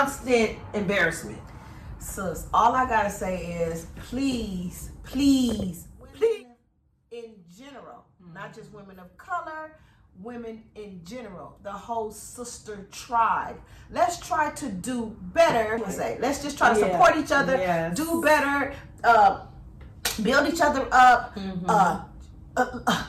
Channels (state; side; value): identical; both; correlation 1.00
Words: embarrassment. Sis, all I gotta say is please, in general, not just women of color, women in general, the whole sister tribe. Let's try to do better. Let's just try to support each other, do better, build each other up,